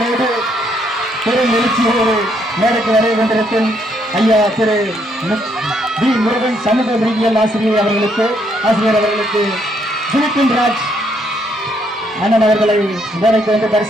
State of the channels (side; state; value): both; normal; correlation 0.72